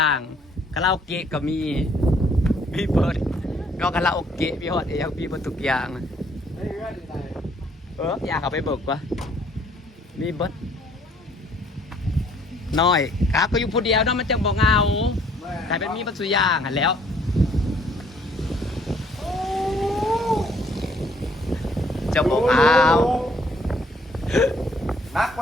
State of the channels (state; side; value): normal; both; correlation 0.63